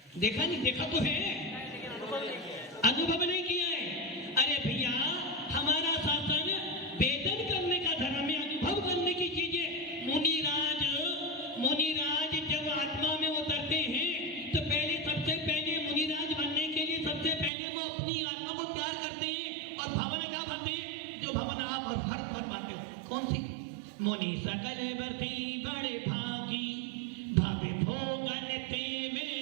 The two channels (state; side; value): drops out; left; at 17.5 s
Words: देखा नहीं, देखा तो है, अनुभव नहीं किया है। अरे भैया, हमारा शासन वेदन करने का धर्म है, अनुभव करने की चीजें। मुनिराज जब आत्मा में उतरते हैं तो पहले, सबसे पहले मुनिराज बनने के लिए सबसे पहले वो अपनी आत्मा को तैयार करते हैं और भावना क्या भरते हैं? जो भावना आप और हर फरमाते हो, कौन सी? मुनि सकल बरती बड़े भागी, भावे भोगन ते